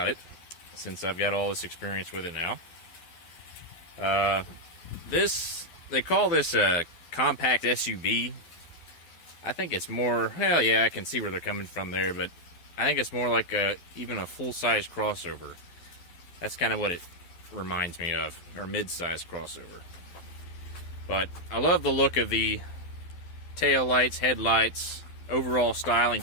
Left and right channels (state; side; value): late; right; 12 ms